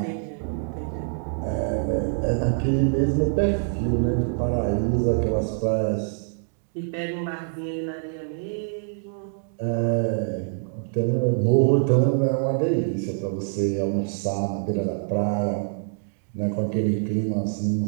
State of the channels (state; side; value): silent; left; digital silence